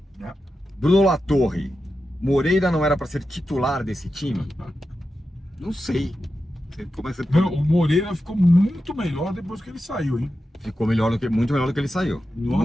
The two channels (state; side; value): normal; both; correlation 0.90